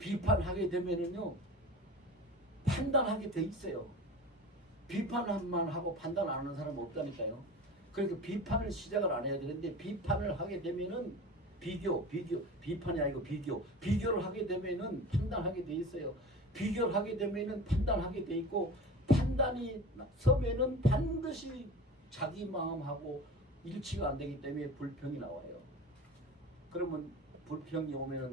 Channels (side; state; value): both; normal; correlation 0.34